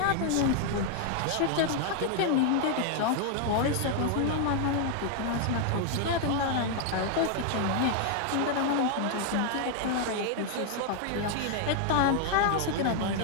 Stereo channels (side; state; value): both; different; correlation 0.00